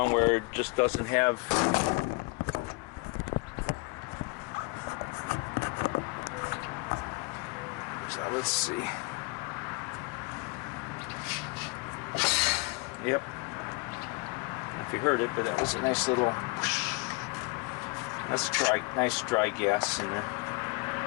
where it just doesn't have so let's see. Yep. If you heard it, but that was a nice little whoosh. That's dry, nice dry gas in there.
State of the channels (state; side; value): quieter; right; 28.1 dB